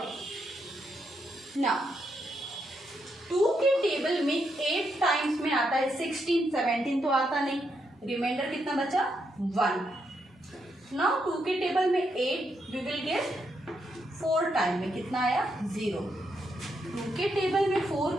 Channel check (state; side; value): normal; both; correlation 0.80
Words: now 2 के टेबल में 8 टाइम्स में आता है 16, 17 तो आता नहीं, रिमाइंडर कितना बचा? 1। नाउ 2 के टेबल में 8 वी विल गेट 4 टाइम में, कितना आया? 0। 2 के टेबल में